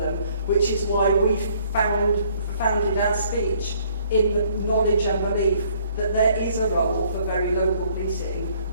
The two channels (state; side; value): inverted; both; correlation -0.62